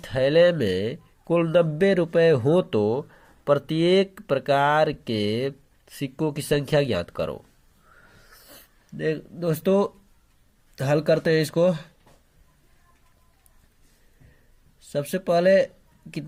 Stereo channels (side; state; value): both; identical; correlation 1.00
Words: थैले में कुल 90 रुपए हो तो प्रत्येक प्रकार के सिक्कों की संख्या ज्ञात करो। दोस्तों हल करते हैं इसको। सबसे पहले